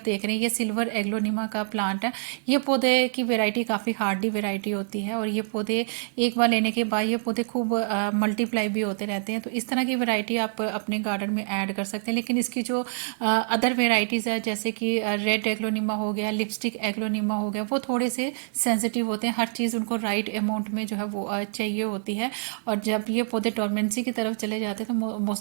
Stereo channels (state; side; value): silent; left; digital silence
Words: देख रहे हैं, ये सिल्वर एग्लोनिमा का प्लांट है। ये पौधे की वेराइटी काफ़ी हार्डी वेराइटी होती है और ये पौधे एक बार लेने के बाद ये पौधे खूब मल्टीप्लाई भी होते रहते हैं। तो इस तरह की वेराइटी आप अपने गार्डन में ऐड कर सकते हैं। लेकिन इसकी जो अदर वेराइटीज़ है, जैसे कि रेड एग्लोनिमा हो गया, लिपस्टिक एग्लोनिमा हो गया, वो थोड़े से सेंसिटिव होते हैं। हर चीज़ उनको राइट अमाउंट में जो है वो चाहिए होती है, और जब ये पौधे डोरमेंसी की तरफ चले जाते हैं तो